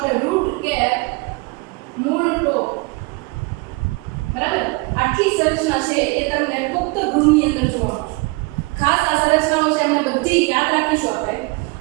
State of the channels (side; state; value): left; quieter; 26.6 dB